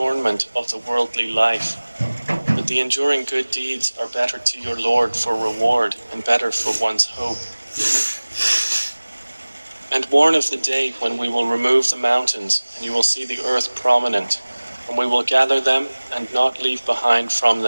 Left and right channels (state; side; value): inverted; both; correlation -1.00